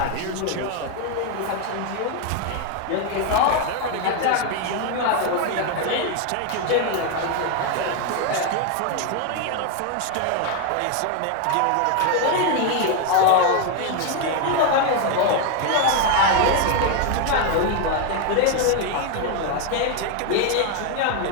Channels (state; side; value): different; both; correlation 0.01